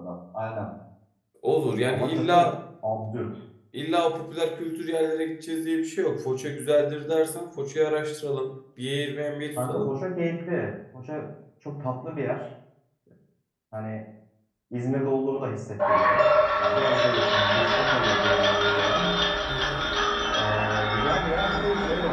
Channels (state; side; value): identical; both; correlation 1.00